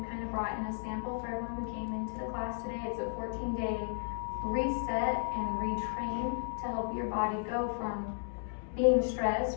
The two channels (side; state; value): right; silent; digital silence